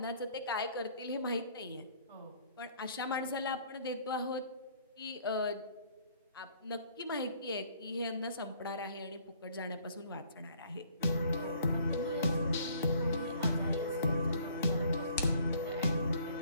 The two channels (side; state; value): both; inverted; correlation -0.59